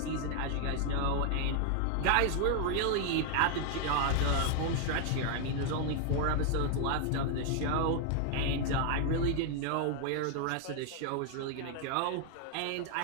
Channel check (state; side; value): different; both; correlation 0.00